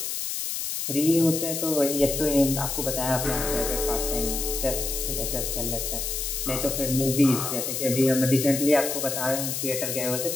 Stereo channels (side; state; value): left; noise; hiss, 3 dB below the sound